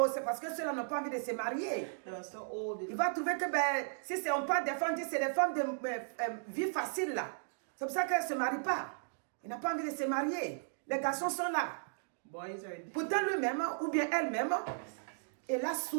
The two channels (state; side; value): silent; left; digital silence